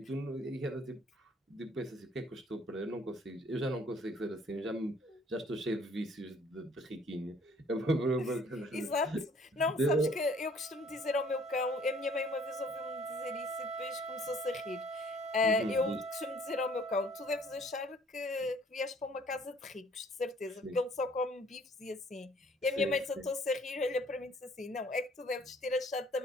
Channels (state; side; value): normal; both; correlation 0.58